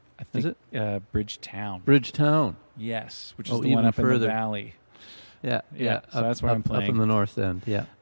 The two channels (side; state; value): both; inverted; correlation -1.00